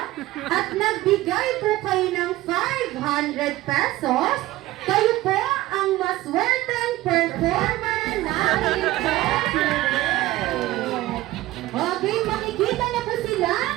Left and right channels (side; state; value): left; quieter; 17.2 dB